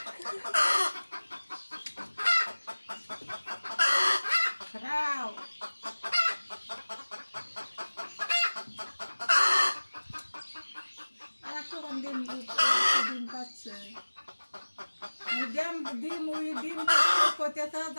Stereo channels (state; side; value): inverted; both; correlation -1.00